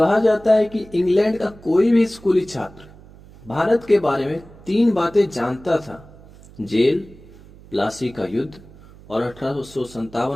जाता है कि इंग्लैंड का कोई भी स्कूली छात्र भारत के बारे में तीन बातें जानता था: जेल, प्लासी का युद्ध और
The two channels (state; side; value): noise; right; hum, 22 dB below the sound